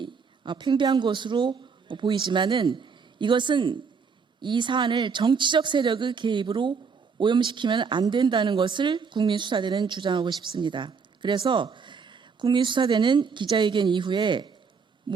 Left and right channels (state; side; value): quieter; left; 5.6 dB